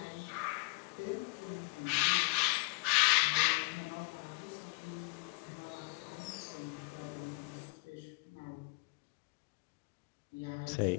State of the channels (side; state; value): right; quieter; 31.1 dB